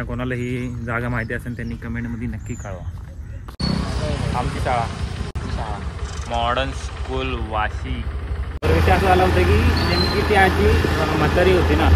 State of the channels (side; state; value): both; identical; correlation 1.00